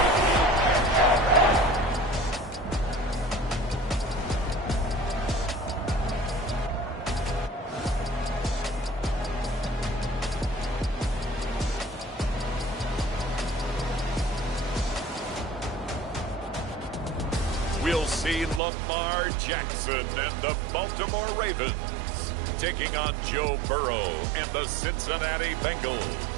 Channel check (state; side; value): drops out; left; at 18.6 s